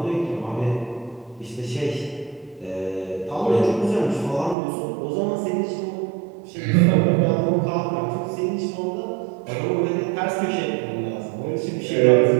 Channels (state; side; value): drops out; left; at 4.5 s